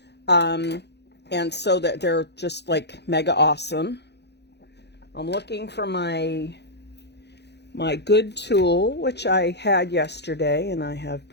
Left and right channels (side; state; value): right; late; 0.49 ms